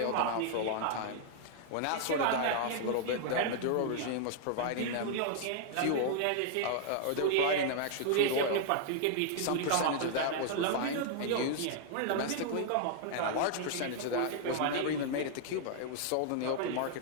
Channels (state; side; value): different; both; correlation -0.01